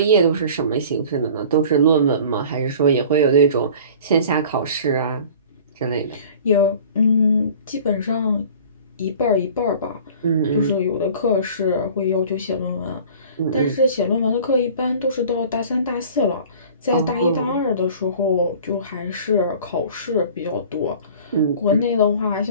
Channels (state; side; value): inverted; both; correlation -0.44